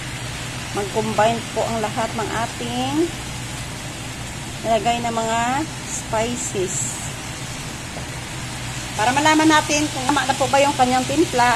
mag-combine po ang lahat ng ating nilagay na mga spices. Para malaman natin kung tama na po ba yung kanyang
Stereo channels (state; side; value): identical; both; correlation 1.00